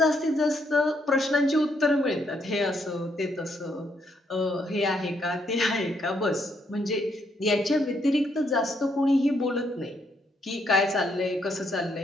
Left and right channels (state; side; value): normal; both; correlation 0.74